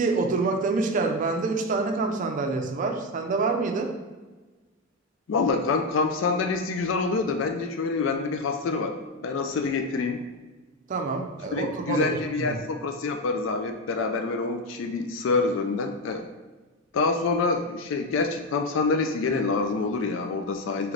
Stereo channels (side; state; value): both; normal; correlation 0.10